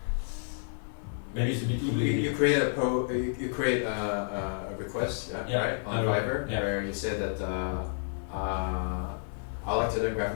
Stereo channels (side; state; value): right; silent; 58 dB below the other